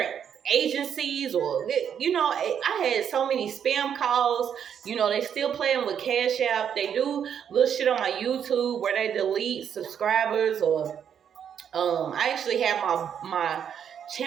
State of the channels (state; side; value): quieter; left; 8.3 dB